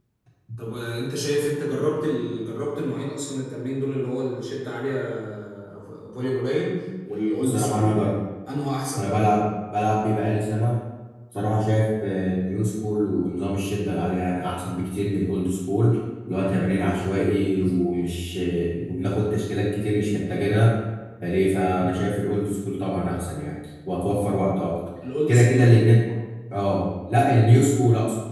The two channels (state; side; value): identical; both; correlation 1.00